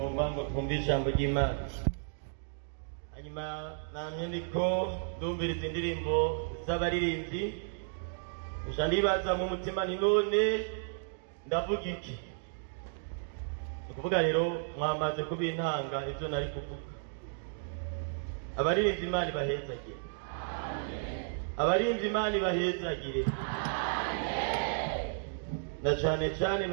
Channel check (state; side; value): silent; left; digital silence